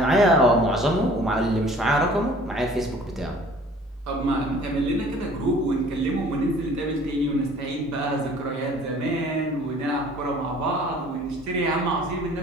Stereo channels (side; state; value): both; normal; correlation 0.51